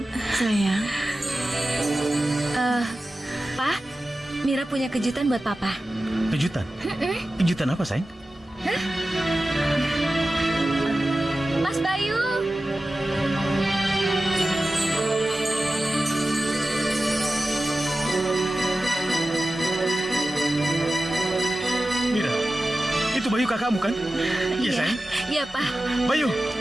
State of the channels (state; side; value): normal; both; correlation 0.94